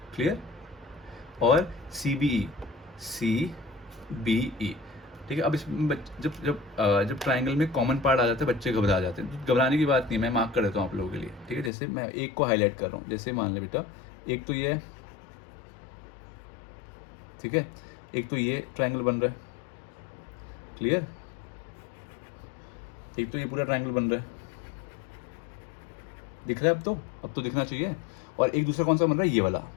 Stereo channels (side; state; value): right; drops out; at 11.7 s